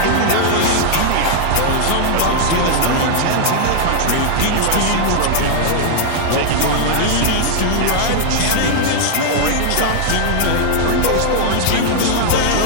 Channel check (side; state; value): both; different; correlation -0.01